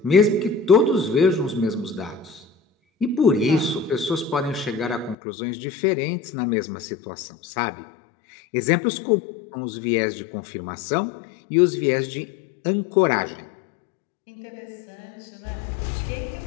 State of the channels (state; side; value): drops out; right; at 5.2 s